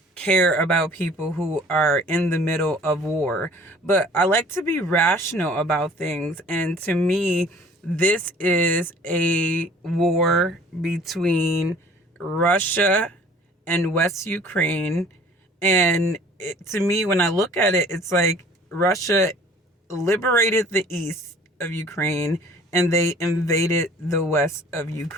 care about people who are in the middle of war? But I like to be rational about things. And to me, this is a war between Russia and West Ukraine. And to me, when I look at it, it's like Russia liberated the east of Ukraine and they invaded the west of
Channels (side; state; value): both; normal; correlation 0.51